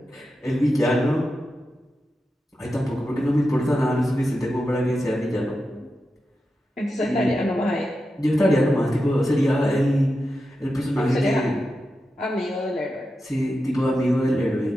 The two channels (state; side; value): normal; both; correlation 0.90